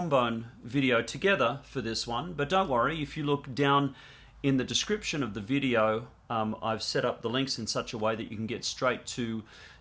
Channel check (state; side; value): identical; both; correlation 1.00